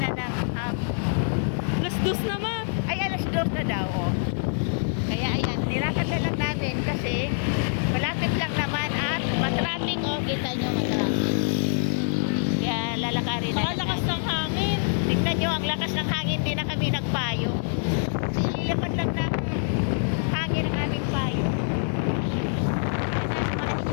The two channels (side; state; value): right; silent; digital silence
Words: ng Alas 2 naman. ay alas 2 na daw. Oh. Kaya ayan, nilakad na lang natin kasi malapit lang naman at matraffic. Oh, kita nyo matraffic. Kaya lalakarin na. Lakas ng hangin. Tignan nyo, ang lakas ng hangin, di na kami nagpayo. Kasi ilipad lang ng hangin ang aming payo. Sasamahan